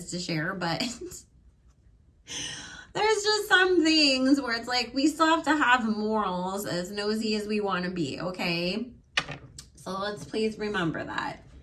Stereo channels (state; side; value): identical; both; correlation 1.00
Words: to share. But there's just some things where it's like we still have to have morals, as nosy as we want to be, okay? So let's please remember that.